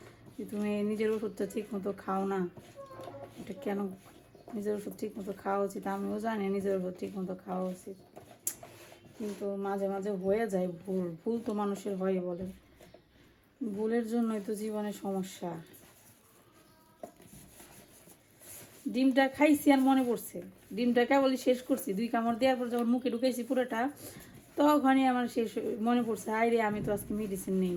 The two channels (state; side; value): identical; both; correlation 1.00